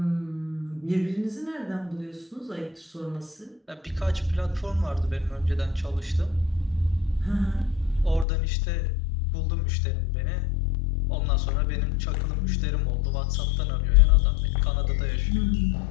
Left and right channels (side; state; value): right; drops out; at 8.2 s